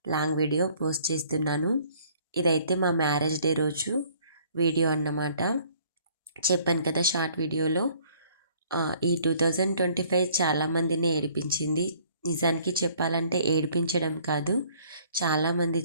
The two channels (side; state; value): both; inverted; correlation -0.59